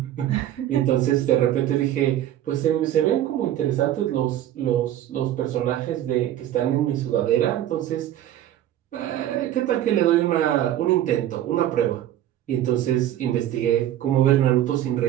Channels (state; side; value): quieter; left; 12.2 dB